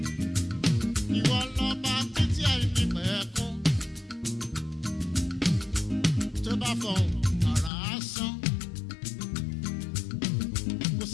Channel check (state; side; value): drops out; right; at 7.7 s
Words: Ìwọ lọ́ba títí àìní pẹ̀kún. Tó bá fọ̀hún àrà á sán. Kò